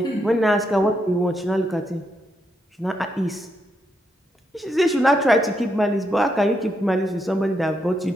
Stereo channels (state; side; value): normal; both; correlation 0.80